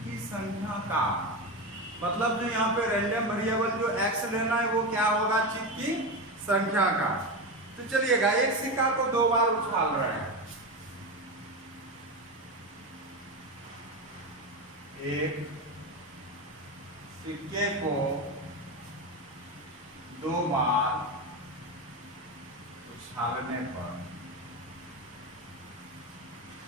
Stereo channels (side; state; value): both; normal; correlation 0.18